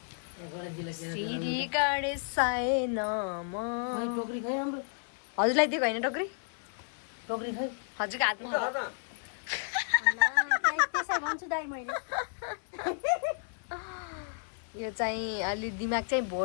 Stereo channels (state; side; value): silent; right; digital silence